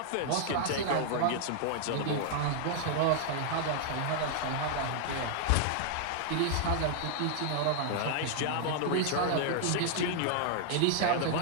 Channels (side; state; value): both; different; correlation -0.01